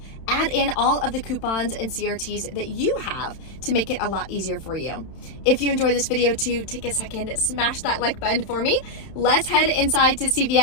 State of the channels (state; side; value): late; right; 31 ms